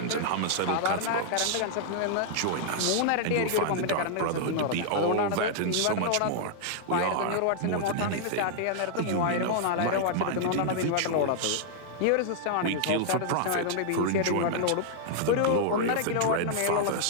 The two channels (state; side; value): different; both; correlation -0.01